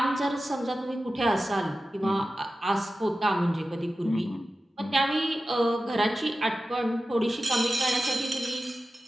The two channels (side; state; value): both; normal; correlation 0.94